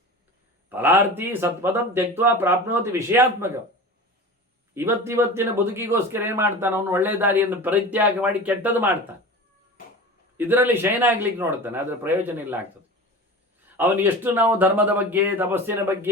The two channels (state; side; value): normal; both; correlation 0.33